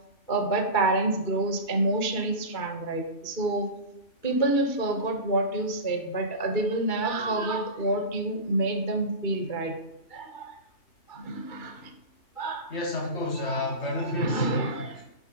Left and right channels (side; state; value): right; late; 2.4 ms